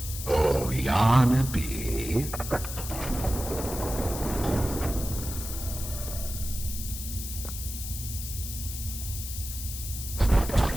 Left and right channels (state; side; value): noise; left; hiss, 8 dB below the sound